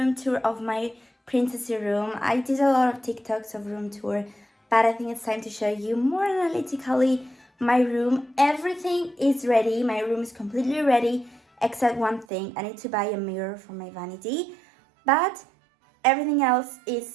tour of my Princessy room. I did a lot of TikToks of room tour, but I think it's time to show you more analytically my room. Everything is ready. My room is completely ready except one thing. I need to buy a mirror for my vanity, but everything else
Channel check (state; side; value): drops out; left; at 12.2 s